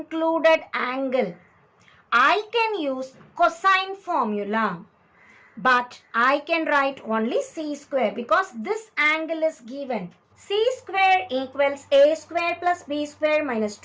angle, I can use cosine formula. But I can write only c square because this angle is given. C square equals a square plus b square minus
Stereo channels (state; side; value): identical; both; correlation 1.00